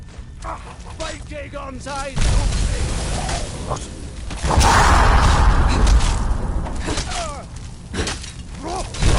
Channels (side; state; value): both; identical; correlation 1.00